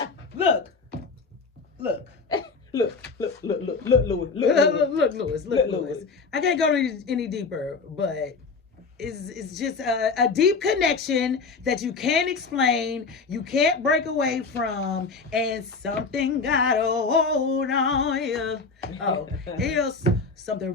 look. Look, Lewis. I can't go any deeper, but it's just a deep connection that you can't explain, you can't break away from, and something got a hold on you. Oh, something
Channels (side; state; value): right; quieter; 4.5 dB